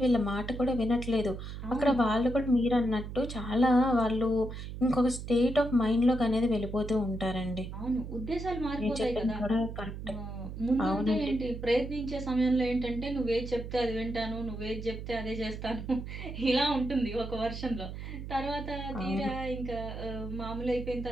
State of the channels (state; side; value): noise; right; hum, 8 dB below the sound